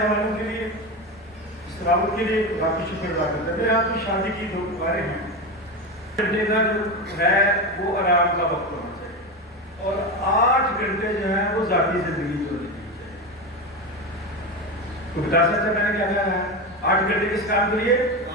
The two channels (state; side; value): normal; both; correlation 0.18